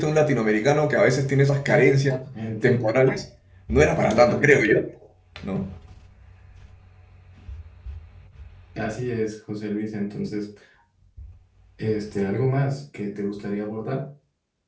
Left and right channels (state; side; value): identical; both; correlation 1.00